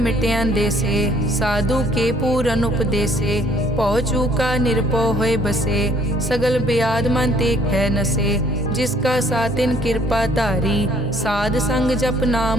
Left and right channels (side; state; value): both; normal; correlation 0.61